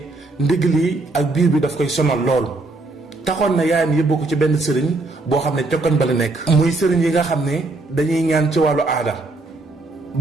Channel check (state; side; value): quieter; left; 3.1 dB